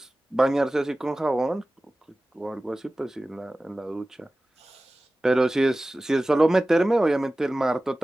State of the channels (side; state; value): both; normal; correlation 0.97